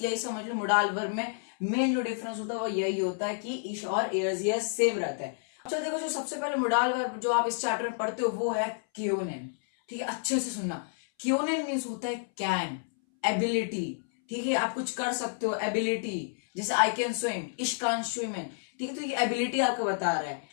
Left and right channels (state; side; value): silent; right; 58 dB below the other